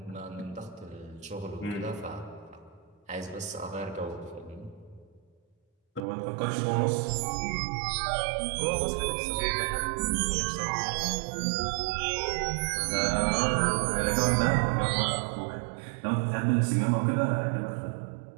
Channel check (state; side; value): drops out; left; at 6.0 s